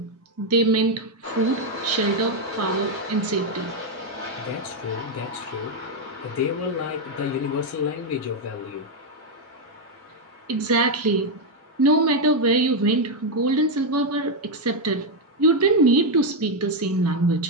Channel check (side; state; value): both; normal; correlation 0.02